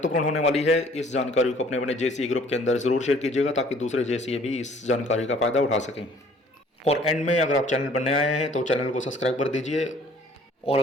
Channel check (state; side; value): normal; both; correlation 0.56